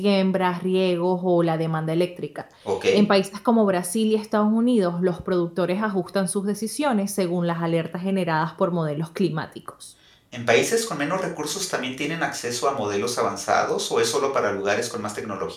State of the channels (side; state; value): both; identical; correlation 1.00